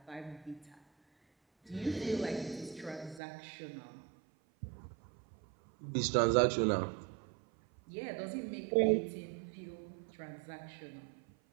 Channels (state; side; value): drops out; left; at 3.2 s